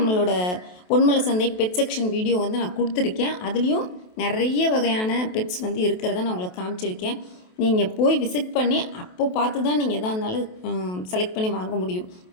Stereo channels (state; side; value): late; right; 28 ms